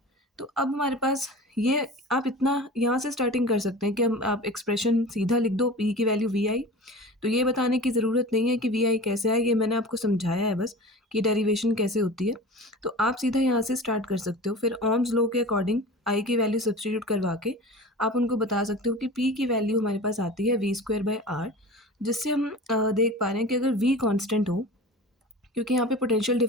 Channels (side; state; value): both; normal; correlation 0.36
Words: तो अब हमारे पास ये, आप इतना यहाँ से स्टार्टिंग कर सकते हैं कि हम आप एक्सप्रेशन सीधा लिख दो P की वैल्यू VI। तो ये बताने की ज़रूरत नहीं है कि VI कैसे आए, ये मैंने आपको समझाया है बस कि डेरिवेशन कैसे होती है। तो आप सीधा यहाँ से स्टार्ट कर सकते हो। फिर ओम्स लॉ के अकॉर्डिंग I की वैल्यू सब्सटीट्यूट करवा के आप उनको बता सकते हो कि P की वैल्यू हमारे पास आती है V स्क्वायर बाई आर, जिससे हम देख पा रहे हैं कि अगर V कांस्टेंट हो, क्योंकि यहाँ पे पोटेंशियल